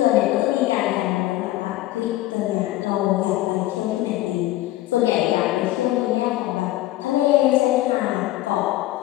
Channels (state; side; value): quieter; right; 16.0 dB